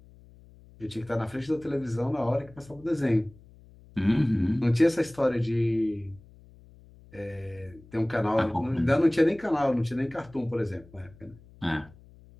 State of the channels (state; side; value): noise; left; hum, 24 dB below the sound